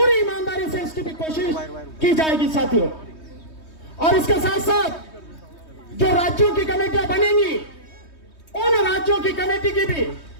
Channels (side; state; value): right; late; 3.2 ms